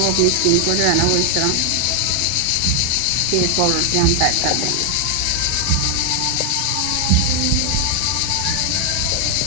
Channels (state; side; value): different; both; correlation 0.00